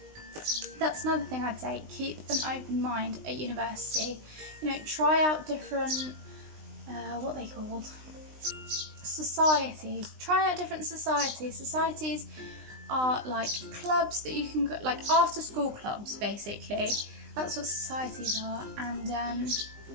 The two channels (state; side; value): late; left; 19 ms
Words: That's another thing I'd say, keep an open mind at university. You know, try out different, what are they called? Societies. Try out different societies. Societies are like clubs that you can go, like after school clubs basically. That's what societies are. And